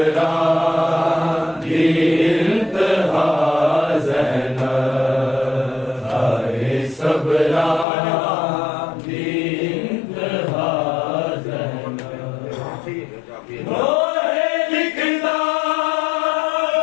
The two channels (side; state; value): right; drops out; at 7.9 s